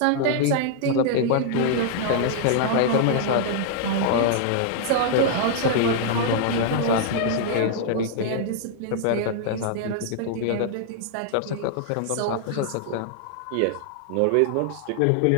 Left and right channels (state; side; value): different; both; correlation -0.01